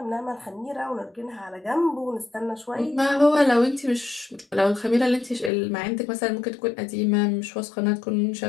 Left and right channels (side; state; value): right; drops out; at 5.5 s